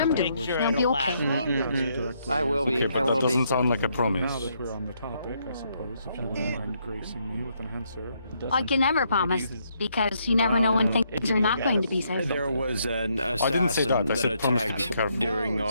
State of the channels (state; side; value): inverted; both; correlation -0.74